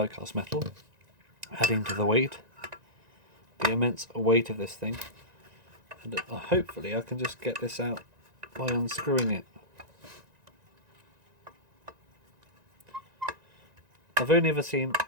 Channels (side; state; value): left; late; 1.9 ms